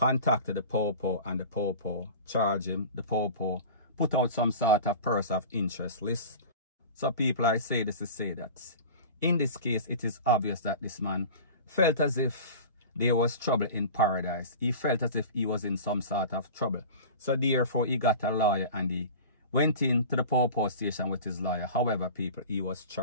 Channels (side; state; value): both; inverted; correlation -0.36